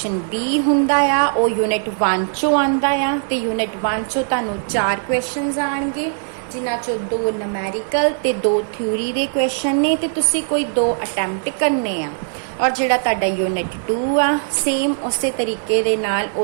B ਹੁੰਦਾ ਆ ਉਹ ਯੂਨਿਟ 1 ਚੋਂ ਆਉਂਦਾ ਆ ਤੇ ਯੂਨਿਟ 1 ਚੋਂ ਤੁਹਾਨੂੰ 4 ਕੁਐਸਚਨਸ ਆਣਗੇ, ਜਿਨ੍ਹਾਂ ਚੋਂ 2 ਨੂਮੈਰੀਕਲ ਤੇ 2 ਥਿਊਰੀ ਦੇ ਕੁਐਸਚਨ ਨੇ ਤੇ ਤੁਸੀਂ ਕੋਈ 2 ਅਟੈਂਪਟ ਕਰਨੇ ਆ। ਔਰ ਜਿਹੜਾ ਤੁਹਾਡਾ ਯੂਨਿਟ 2 ਆ, ਸੇਮ ਉਸੇ ਤਰੀਕੇ ਦੇ ਨਾਲ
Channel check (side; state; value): left; silent; 66 dB below the other